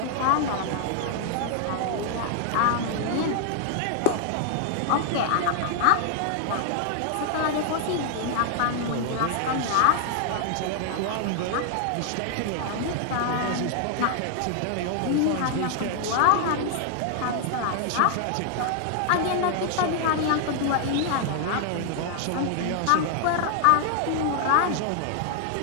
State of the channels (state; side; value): different; both; correlation 0.00